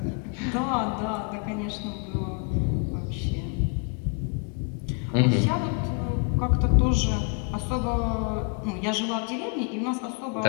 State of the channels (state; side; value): quieter; right; 35.5 dB